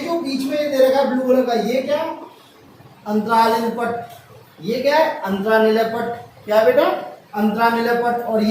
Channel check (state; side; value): identical; both; correlation 1.00